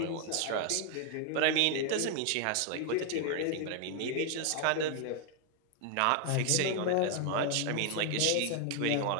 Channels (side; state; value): both; different; correlation 0.01